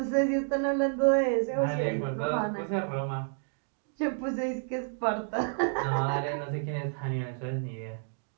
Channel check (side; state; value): left; silent; 56 dB below the other